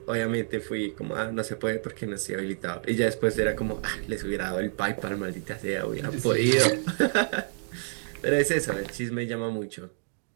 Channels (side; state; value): left; silent; digital silence